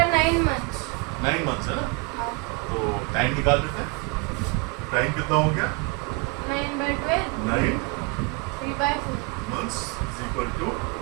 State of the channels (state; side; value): quieter; left; 29.0 dB